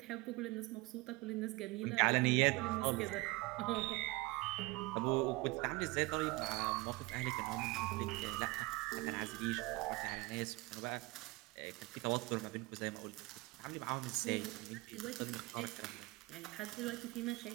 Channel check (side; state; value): left; quieter; 22.6 dB